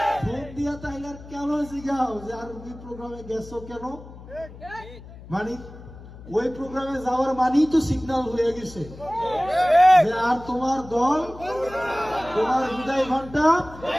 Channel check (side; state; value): left; noise; hum, 17 dB below the sound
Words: ফোন দিয়া তাইলে কেন জিগাও যে আর ওই প্রোগ্রামে গেছো কেন? মানে ওই প্রোগ্রামে যাওয়ার মানেই তো সিগন্যাল হয়ে গেছে যে আর তোমার দল, তোমার বিদায় ঘন্টা।